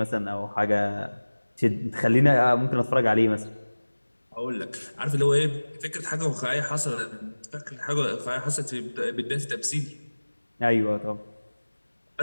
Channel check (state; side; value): inverted; both; correlation -1.00